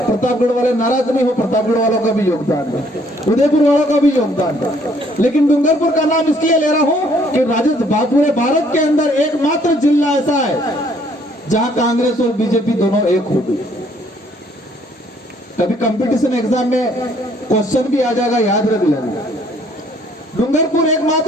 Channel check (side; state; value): both; normal; correlation 0.64